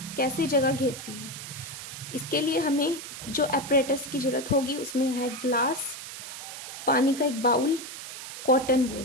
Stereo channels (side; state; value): right; noise; hiss, 10 dB below the sound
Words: कैसे जगह घेरती है. इसके लिए हमें जो एपरेटस की ज़रूरत होगी उसमें है ग्लास, पानी का एक बाउल, कॉटन